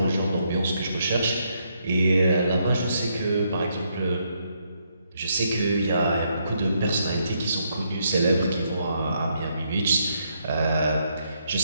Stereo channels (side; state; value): both; inverted; correlation -0.76